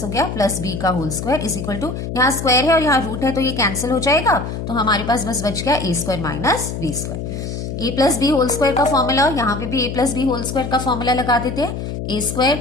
हो गया प्लस b का whole square is equal to, यहाँ स्क्वायर है और यहाँ रूट है तो ये कैंसिल हो जाएगा, तो हमारे पास बस बच गया a² minus b²। a plus b whole square का फॉर्मूला, यहाँ पे भी a plus b whole square का फॉर्मूला लगा देते हैं,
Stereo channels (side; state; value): left; noise; hum, 6 dB below the sound